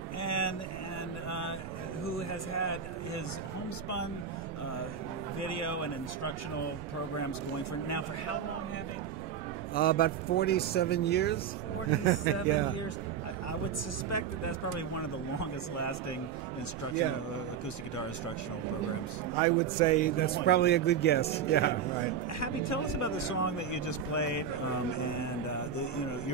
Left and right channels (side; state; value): left; quieter; 7.5 dB